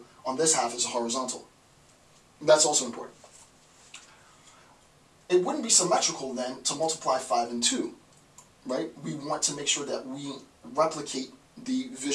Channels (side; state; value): both; identical; correlation 1.00